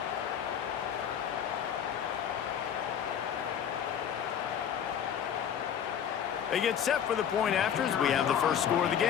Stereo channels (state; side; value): quieter; right; 8.7 dB